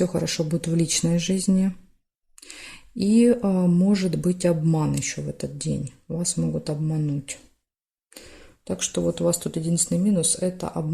хорошо будет в личной жизни. И может быть обман еще в этот день. Вас могут обмануть. Так что вот у вас тут единственный минус – это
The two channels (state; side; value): identical; both; correlation 1.00